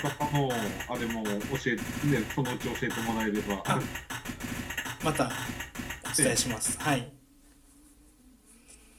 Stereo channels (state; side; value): identical; both; correlation 1.00